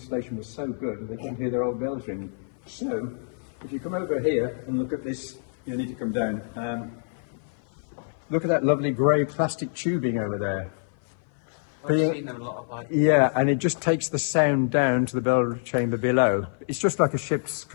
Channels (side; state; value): right; silent; 56 dB below the other